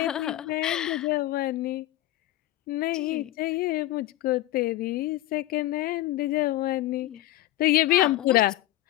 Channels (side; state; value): right; quieter; 15.7 dB